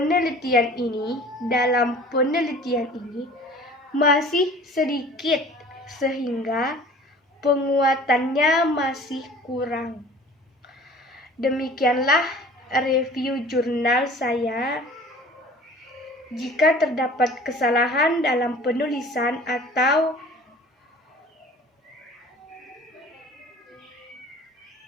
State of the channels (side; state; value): both; normal; correlation 0.46